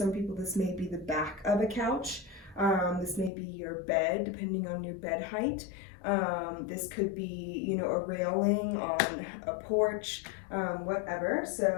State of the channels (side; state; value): right; drops out; at 3.3 s